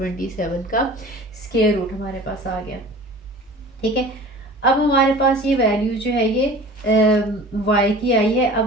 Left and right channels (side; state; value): both; normal; correlation 0.41